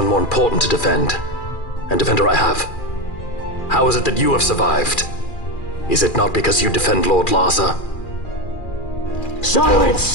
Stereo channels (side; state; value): right; late; 2.4 ms